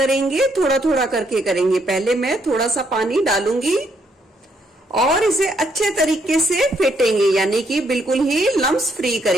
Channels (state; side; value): normal; both; correlation 0.73